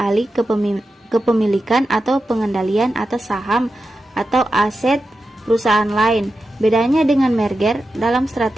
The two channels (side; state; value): both; normal; correlation 0.91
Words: alih kepemilikan atau pengendalian atas saham atau aset perusahaan lain. Bedanya dengan merger, dalam